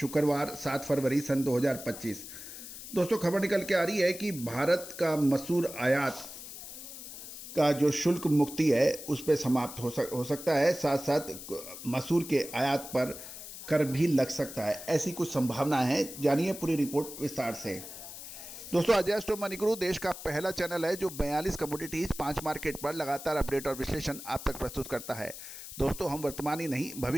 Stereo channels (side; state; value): left; noise; hiss, 12 dB below the sound